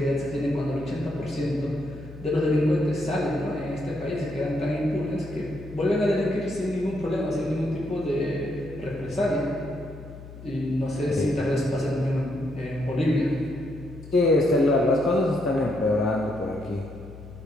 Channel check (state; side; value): noise; left; hum, 15 dB below the sound